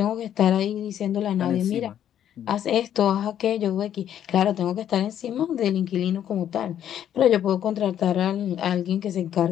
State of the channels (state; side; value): quieter; right; 10.3 dB